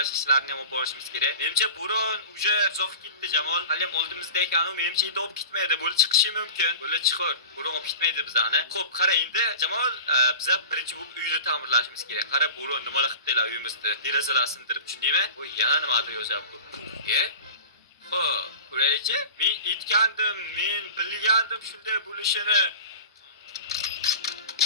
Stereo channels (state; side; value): inverted; both; correlation -0.35